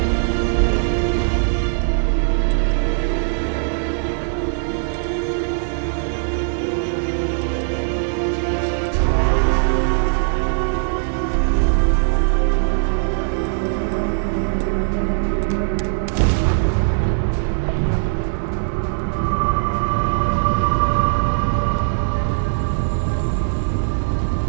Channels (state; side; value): silent; left; digital silence